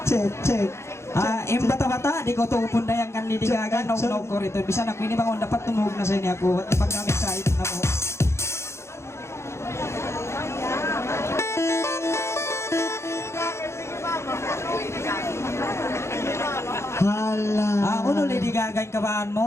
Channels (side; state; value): right; late; 0.13 ms